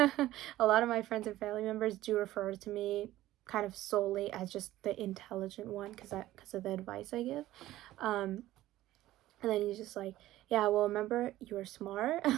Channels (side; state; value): left; quieter; 15.2 dB